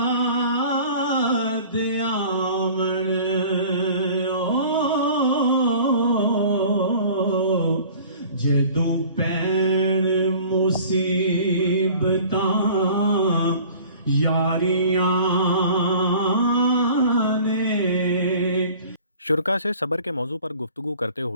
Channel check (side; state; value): both; inverted; correlation -0.46